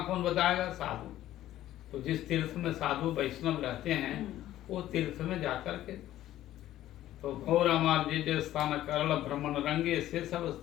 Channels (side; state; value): right; quieter; 13.6 dB